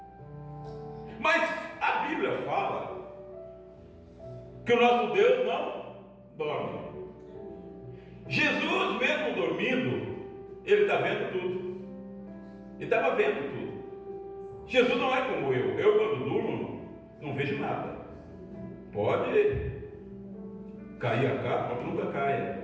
Mas a Bíblia fala que o nosso Deus não dorme. Jesus, mesmo dormindo, ele está vendo tudo. Ele estava vendo tudo. Jesus não é como eu. Eu, quando durmo, não vejo nada. Pode cair a capa, mas nunca cai,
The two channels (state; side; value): identical; both; correlation 1.00